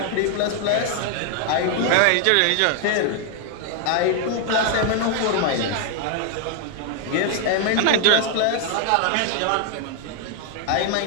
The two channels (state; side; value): different; both; correlation 0.00